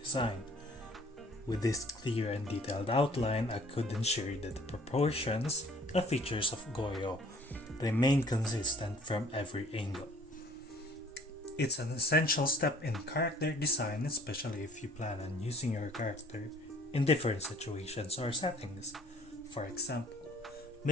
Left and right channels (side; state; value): both; normal; correlation 0.55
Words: With this clear and detailed outline, I could ensure that the proportions and features of Goyo remain consistent from every angle. It's an essential step in character design, especially if you plan on using your character in different situations or settings. For example,